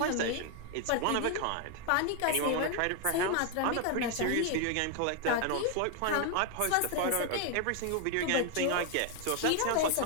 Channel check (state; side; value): different; both; correlation 0.00